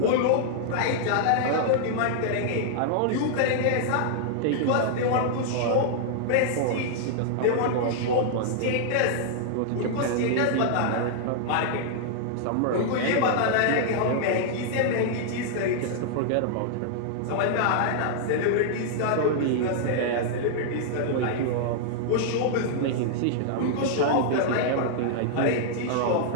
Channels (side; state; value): both; different; correlation -0.01